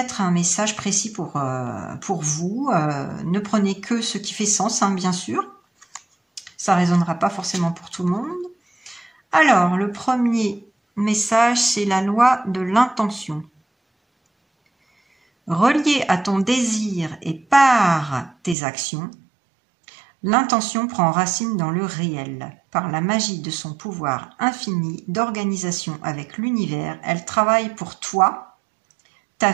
un message précis pour vous. Ne prenez que ce qui fait sens, bien sûr. Ça ne résonnera pas forcément pour tout le monde. Alors, le premier message, c'est la loi de l'intention. Relié à ton désir et par tes actions, l'intention prend racine dans le réel. Par la magie de son pouvoir infini d'organisation avec l'univers, elle travaille pour toi, ta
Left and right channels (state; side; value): drops out; left; at 18.6 s